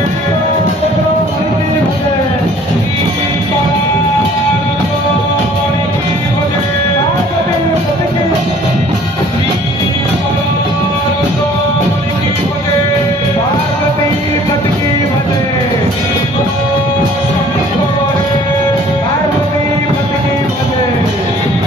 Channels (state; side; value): normal; both; correlation 0.54